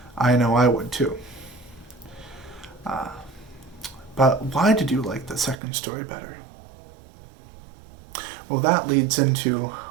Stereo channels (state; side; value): drops out; left; at 5.6 s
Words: I know I would too. But why did you like the second story better? Well, that leads into